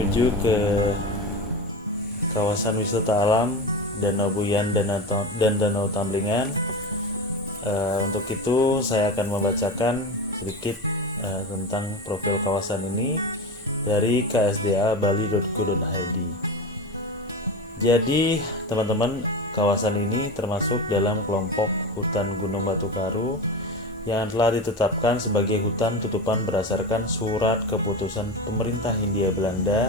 ke kawasan wisata alam Danau Buyan dan Danau Tamblingan. Untuk itu saya akan membacakan sedikit tentang profil kawasan ini dari ksda.bali.go.id. Jadi teman-teman, kawasan ini termasuk dalam kelompok hutan Gunung Batu Karu yang telah ditetapkan sebagai hutan tutupan berdasarkan surat keputusan pemerintah Hindia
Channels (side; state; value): both; normal; correlation 0.24